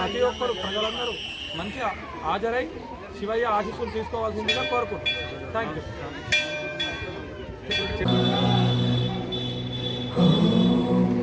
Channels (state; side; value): identical; both; correlation 1.00